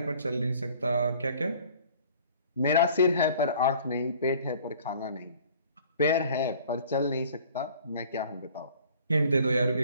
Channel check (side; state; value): both; inverted; correlation -0.52